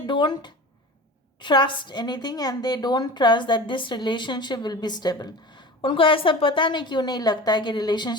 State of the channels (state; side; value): normal; both; correlation 0.36